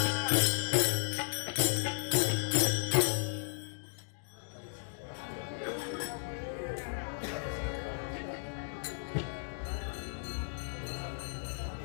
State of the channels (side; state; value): right; silent; digital silence